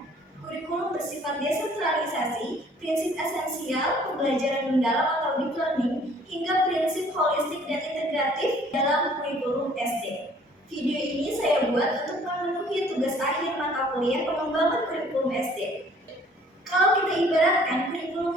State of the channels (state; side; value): normal; both; correlation 0.56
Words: Kurikulum bersifat desentralisasi, prinsip esensial, pembelajaran mendalam atau deep learning, hingga prinsip holistik dan integratif dalam kurikulum SD. Video ini saya buat untuk memenuhi tugas akhir mata kuliah pengembangan kurikulum SD. Kalau kita ibaratkan,